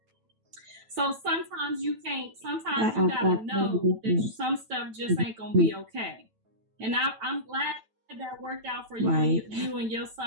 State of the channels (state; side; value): late; left; 9.1 ms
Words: So sometimes you gotta know that some stuff just ain't gonna be okay. And I'm glad that worked out for you, right. you and your